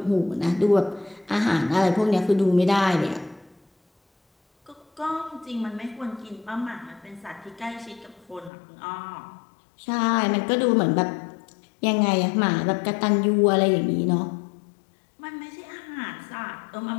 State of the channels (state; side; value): drops out; right; at 8.5 s